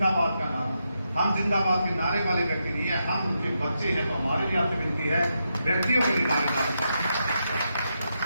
का नारा। हम जिंदाबाद के नारे वाले व्यक्ति नहीं है, हम उनके बच्चे हैं। तो हमारे लिए आपसे विनती है, व्यक्तियों के लिए नारे डालें।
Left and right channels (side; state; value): both; inverted; correlation -0.84